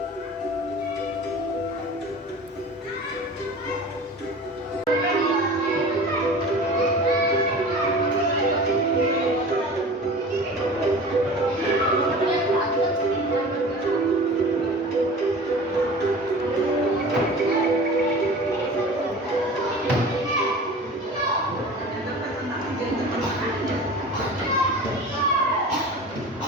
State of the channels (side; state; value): both; normal; correlation 0.38